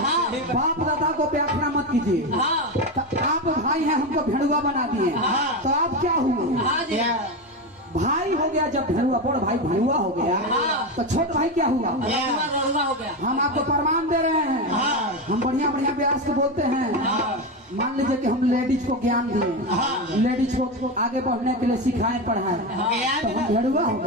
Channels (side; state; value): both; normal; correlation 0.16